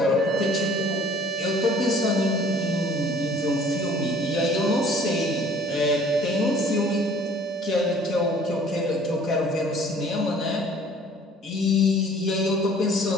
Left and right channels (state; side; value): normal; both; correlation 0.53